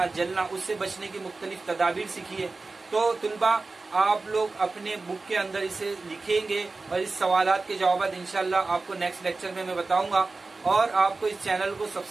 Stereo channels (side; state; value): left; quieter; 3.7 dB